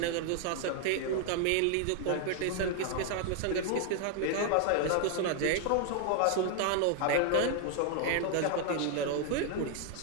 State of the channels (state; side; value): different; both; correlation 0.00